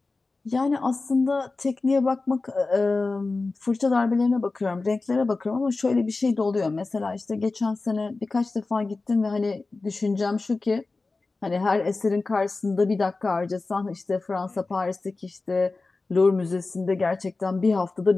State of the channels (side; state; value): right; quieter; 3.6 dB